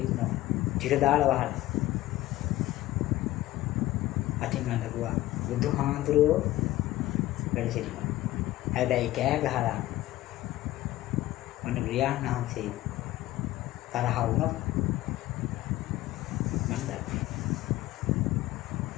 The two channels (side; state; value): right; quieter; 16.2 dB